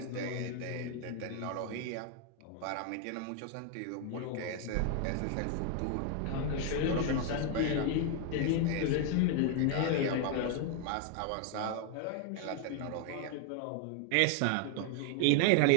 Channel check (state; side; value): different; both; correlation 0.01